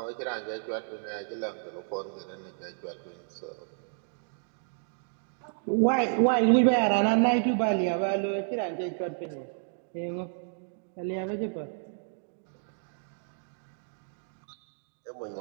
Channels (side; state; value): left; silent; digital silence